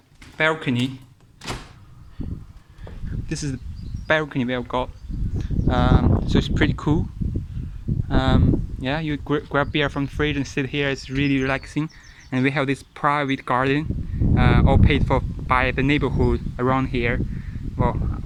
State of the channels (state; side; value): identical; both; correlation 1.00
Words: balcony. This is the balcony we have got. So it's pretty cool. You grab beer from the fridge and sit here. It's really relaxing. And we have this private garden, all paid for by the neighborhood around here. Well,